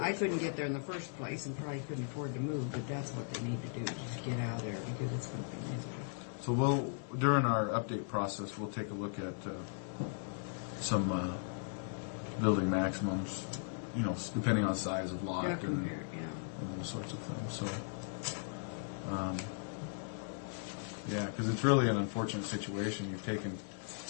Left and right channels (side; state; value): right; silent; 53 dB below the other